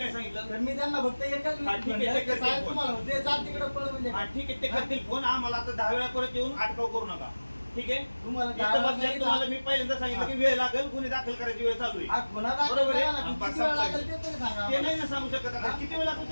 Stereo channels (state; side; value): inverted; both; correlation -1.00